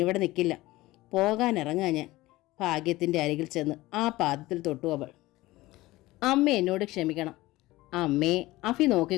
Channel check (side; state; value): right; quieter; 18.6 dB